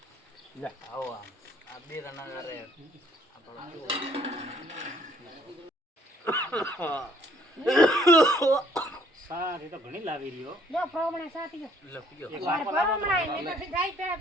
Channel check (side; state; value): both; normal; correlation 0.62